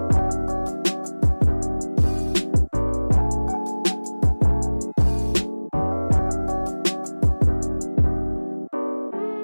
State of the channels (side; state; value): both; inverted; correlation -1.00